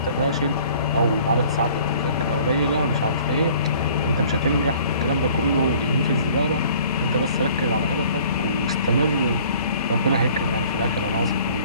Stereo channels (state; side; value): inverted; both; correlation -0.52